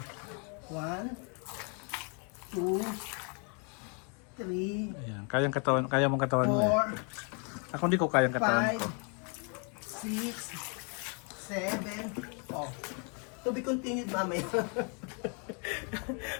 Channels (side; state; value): right; quieter; 37.2 dB